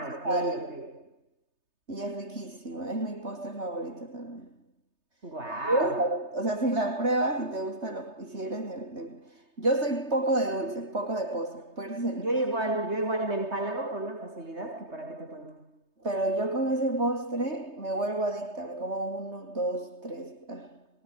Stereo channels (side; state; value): left; late; 3.3 ms